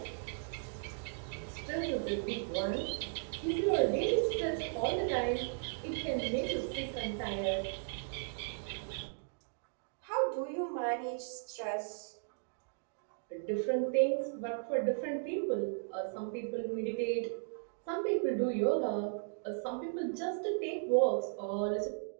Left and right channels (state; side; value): silent; left; digital silence